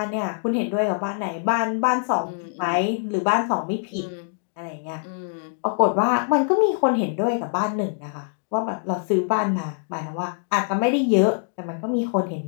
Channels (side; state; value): right; silent; digital silence